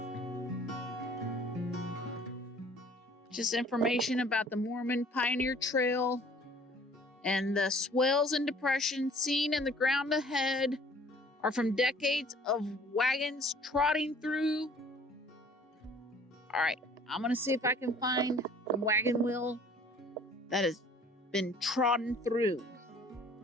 Just information about the Mormon Pioneer Trail and the swells and depressions seen in the ground ahead are from decades of wagons trotting through. All right, I'm gonna see if I can find a wagon wheel that has been trodden through.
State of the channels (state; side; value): normal; both; correlation 0.53